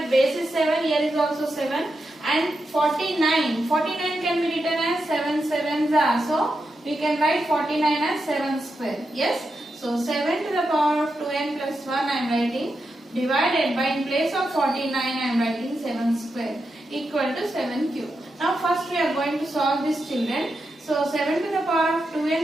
base is 7, here is also 7, and 49 can be written as 7 sevens are. So we can write 49 as 7 square. Yes. So 7 to the power of 2n plus 1 I am writing, divided by, in place of 49 I am writing 7 square equal to 7 cube. Now first we are going to solve this, children. So 7 to the power of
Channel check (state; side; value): normal; both; correlation 0.87